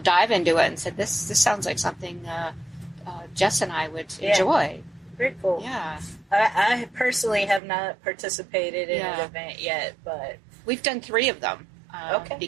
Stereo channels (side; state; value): left; drops out; at 7.6 s